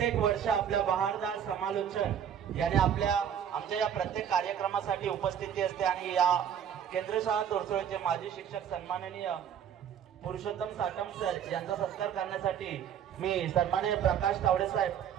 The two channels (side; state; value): left; quieter; 8.8 dB